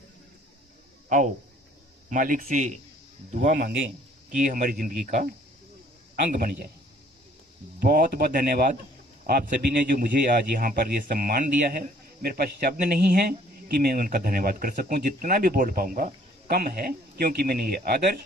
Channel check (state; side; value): normal; both; correlation 0.58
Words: आओ मालिक से दुआ मांगे कि ये हमारी जिंदगी का अंग बन जाए। बहुत बहुत धन्यवाद आप सभी ने जो मुझे आज यहाँ पर ये सम्मान दिया है। मेरे पास शब्द नहीं है कि मैं उनका धन्यवाद कर सकूं, जितना भी बोल पाऊंगा कम है, क्योंकि मैंने ये आदर्श